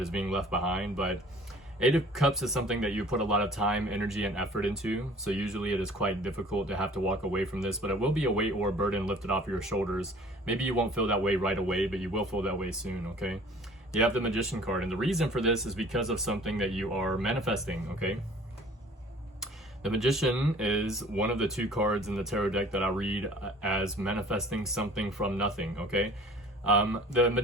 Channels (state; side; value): normal; both; correlation 0.50